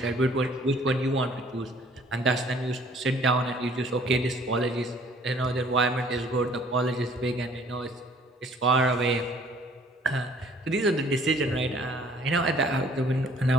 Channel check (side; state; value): both; normal; correlation 0.57